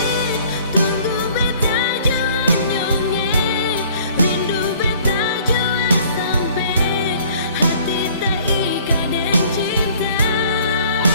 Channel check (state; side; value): inverted; both; correlation -0.55